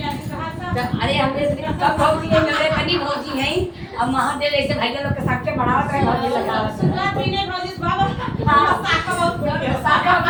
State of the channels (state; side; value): identical; both; correlation 1.00